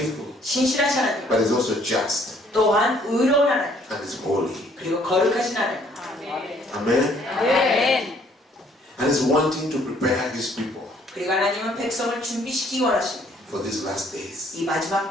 신실하신 하나님. but He's also just 또한 의로운 하나님. and He's holy. 그리고 거룩하신 하나님. Amen. 아멘. And He's wanting to prepare His people 그리고 하나님은 백성을 준비시키기 원하십니다. for these last days. 이 마지막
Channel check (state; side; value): normal; both; correlation 0.62